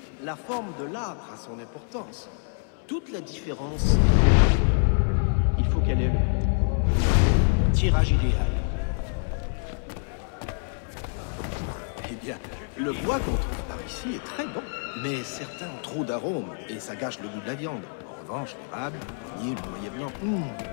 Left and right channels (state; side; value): silent; right; 60 dB below the other